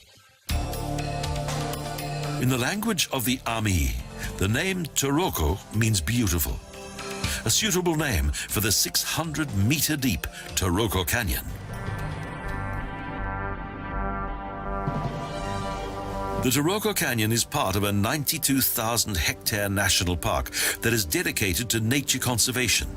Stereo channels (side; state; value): both; identical; correlation 1.00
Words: In the language of the Ami, the name Taroko means beautiful, a suitable name for the 600-meter-deep Taroko Canyon. The Taroko Canyon is part of a 92,000-hectare national park that is dedicated to nature conservation.